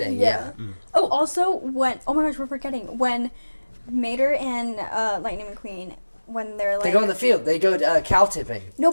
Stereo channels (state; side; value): inverted; both; correlation -1.00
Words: Yeah. Oh, also when oh my gosh, we're forgetting when Mater and Lightning McQueen when they're like They go in the field. They go cow tipping. no,